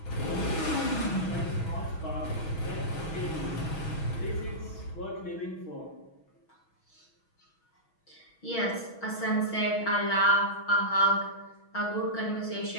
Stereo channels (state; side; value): late; right; 6.2 ms